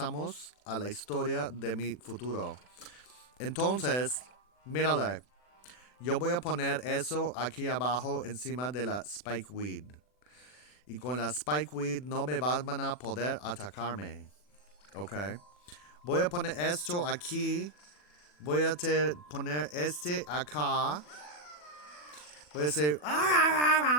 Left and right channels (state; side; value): late; right; 40 ms